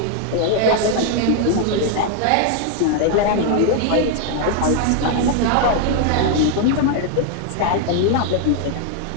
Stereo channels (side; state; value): both; different; correlation 0.00